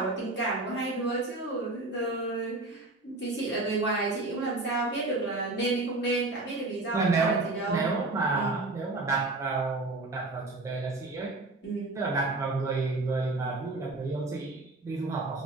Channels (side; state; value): left; quieter; 3.0 dB